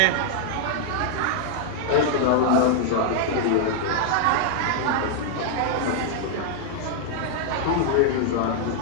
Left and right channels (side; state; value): both; different; correlation -0.01